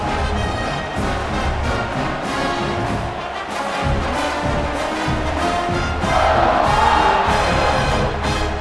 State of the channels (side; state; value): both; identical; correlation 1.00